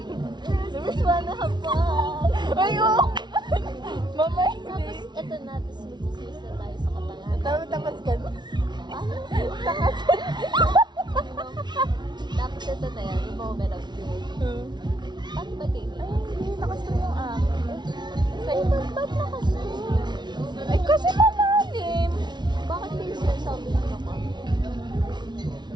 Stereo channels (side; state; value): left; late; 0.21 ms